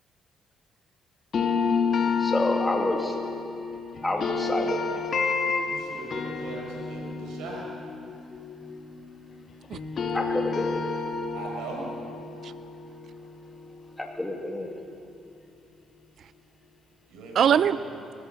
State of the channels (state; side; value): normal; both; correlation 0.72